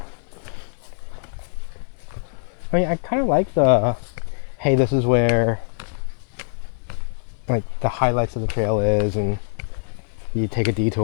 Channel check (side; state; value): right; silent; digital silence